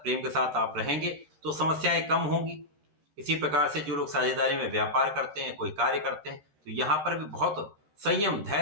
के साथ आप रहेंगे तो समस्याएं कम होंगी। इसी प्रकार से जो लोग साझेदारी में व्यापार करते हैं, कोई कार्य करते हैं, तो यहाँ पर भी बहुत संयम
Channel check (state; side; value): late; left; 13 ms